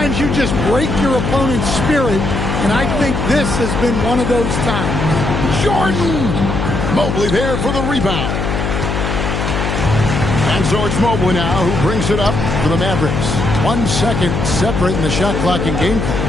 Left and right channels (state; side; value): noise; left; hum, 2 dB below the sound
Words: you just break your opponent's spirit, and I think this has been one of those times. Jordan! Mobley there for the rebound. And so it's Mobley now who brings it up for the Mavericks. 1 second separating the shot clock and game clock.